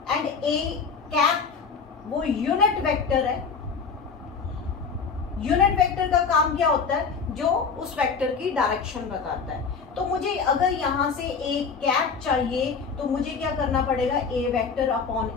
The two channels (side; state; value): right; quieter; 5.5 dB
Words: एंड ए कैप वो यूनिट वेक्टर है। यूनिट वेक्टर का काम क्या होता है, जो उस वेक्टर की डायरेक्शन बताता है। तो मुझे अगर यहां से ए कैप चाहिए तो मुझे क्या करना पड़ेगा, ए वेक्टर अपॉन